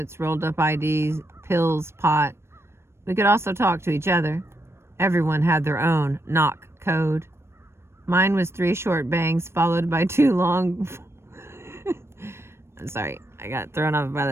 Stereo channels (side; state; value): left; late; 0.12 ms